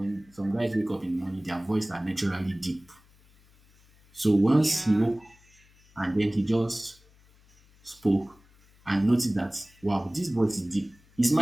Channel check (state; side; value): noise; left; hum, 30 dB below the sound